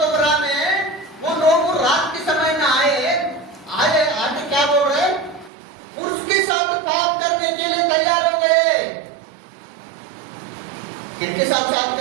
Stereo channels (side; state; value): left; drops out; at 5.5 s